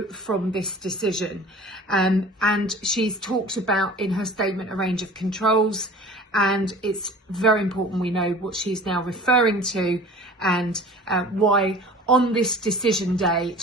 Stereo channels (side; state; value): both; normal; correlation 0.43